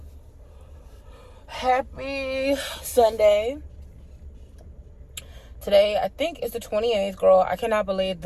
Happy Sunday. Today, I think it's the 28th, girl. I cannot believe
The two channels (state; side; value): identical; both; correlation 1.00